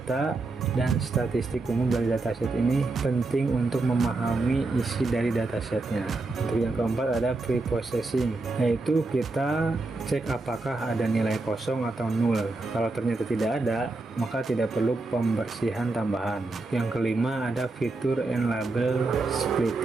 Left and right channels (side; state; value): left; quieter; 3.3 dB